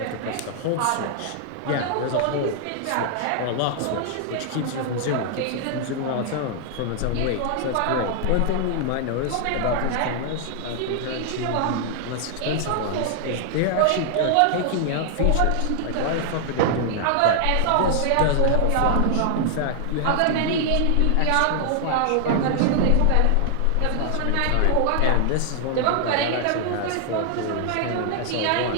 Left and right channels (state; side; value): different; both; correlation 0.00